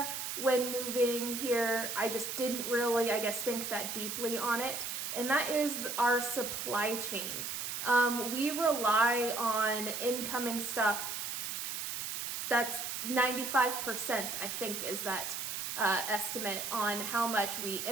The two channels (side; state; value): right; noise; hiss, 4 dB below the sound